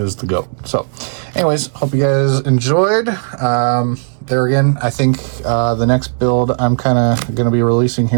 the GOAT. So, anyways, hope you guys enjoyed. There again, I think the next build I'm kind of going to be releasing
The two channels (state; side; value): silent; left; digital silence